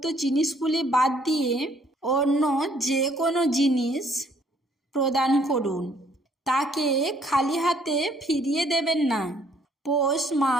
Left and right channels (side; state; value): both; normal; correlation 0.64